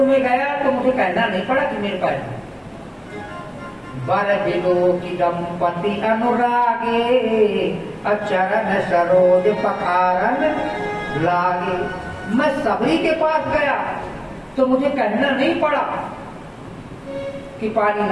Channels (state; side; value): identical; both; correlation 1.00